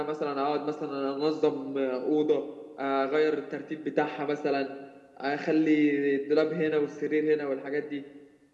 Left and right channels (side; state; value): both; identical; correlation 1.00